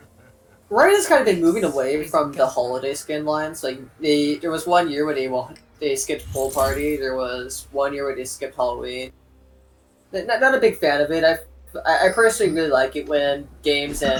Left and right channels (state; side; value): identical; both; correlation 1.00